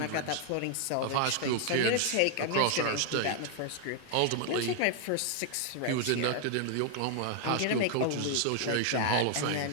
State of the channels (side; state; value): both; different; correlation 0.00